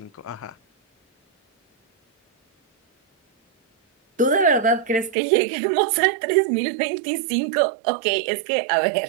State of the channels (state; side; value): drops out; left; at 5.2 s